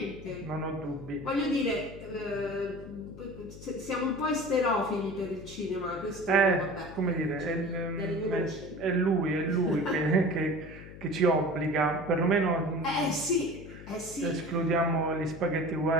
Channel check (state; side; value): noise; left; hum, 15 dB below the sound